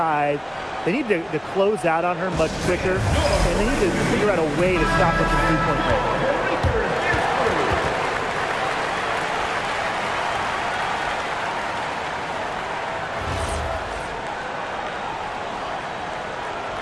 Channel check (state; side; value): identical; both; correlation 1.00